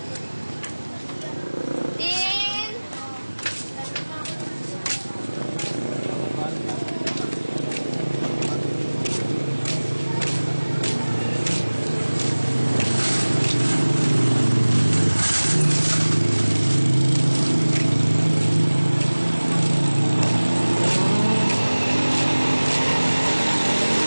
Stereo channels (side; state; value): both; inverted; correlation -1.00